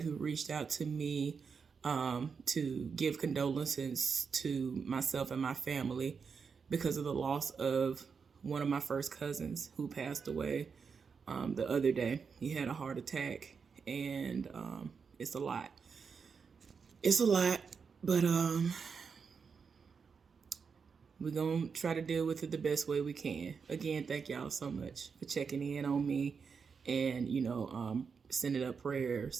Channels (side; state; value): left; quieter; 5.8 dB